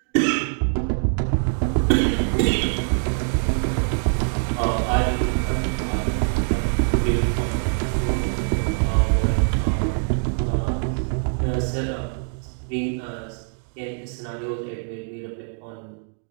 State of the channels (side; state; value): left; silent; 57 dB below the other